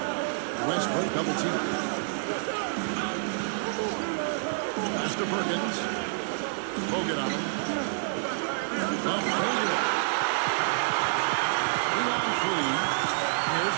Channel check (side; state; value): left; silent; 59 dB below the other